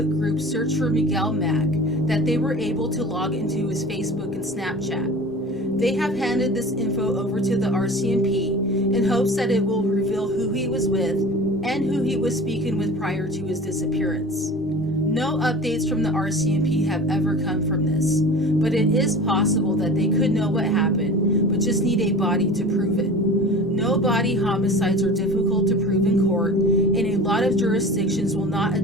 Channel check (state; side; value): normal; both; correlation 0.38